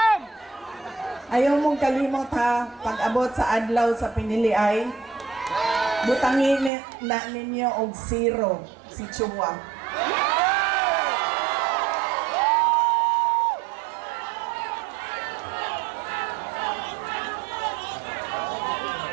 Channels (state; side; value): drops out; left; at 6.7 s